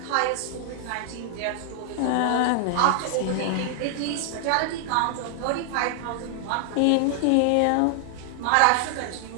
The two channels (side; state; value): both; different; correlation 0.00